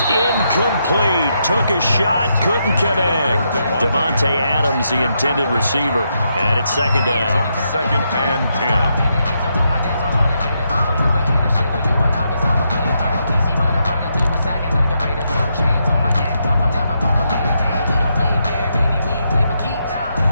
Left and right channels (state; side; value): inverted; both; correlation -0.81